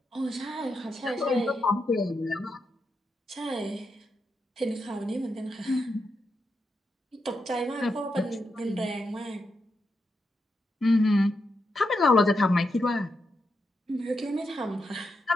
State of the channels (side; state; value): both; normal; correlation 0.84